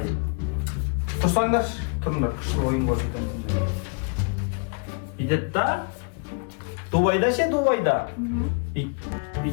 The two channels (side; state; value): right; quieter; 35.8 dB